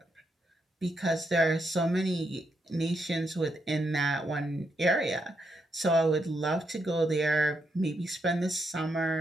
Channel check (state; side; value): normal; both; correlation 0.80